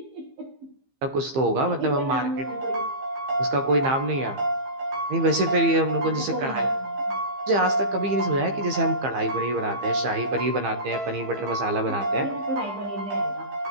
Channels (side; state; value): left; late; 15 ms